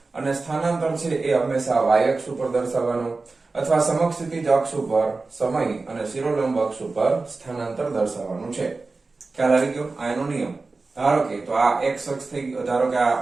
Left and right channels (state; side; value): quieter; left; 3.8 dB